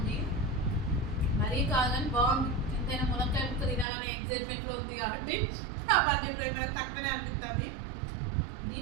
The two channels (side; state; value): left; drops out; at 3.9 s